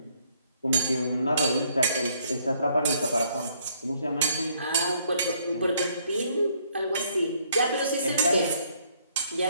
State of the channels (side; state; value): both; inverted; correlation -0.66